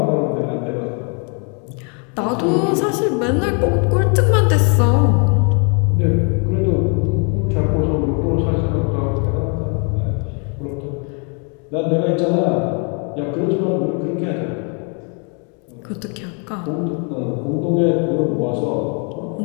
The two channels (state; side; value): quieter; right; 37.7 dB